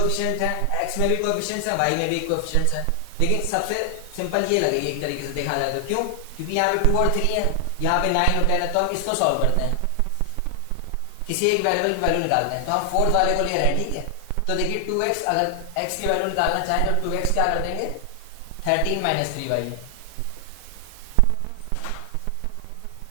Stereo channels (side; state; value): both; different; correlation 0.00